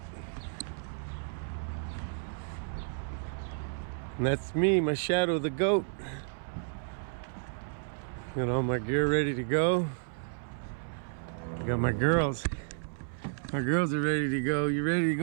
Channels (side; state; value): left; silent; 57 dB below the other